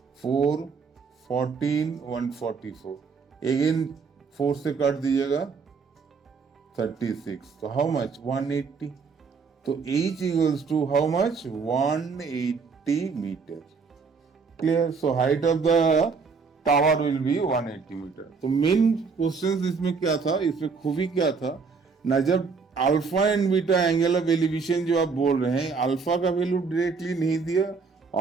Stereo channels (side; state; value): left; quieter; 5.1 dB